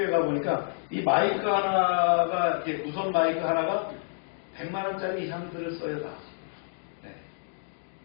가 보니까 이 마이크 하나가 이렇게 무선 마이크 하나가 100만 원짜리 이상들을 써요 다. 네.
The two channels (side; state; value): right; silent; digital silence